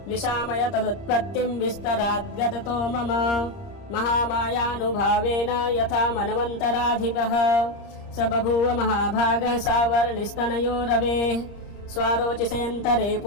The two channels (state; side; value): late; right; 30 ms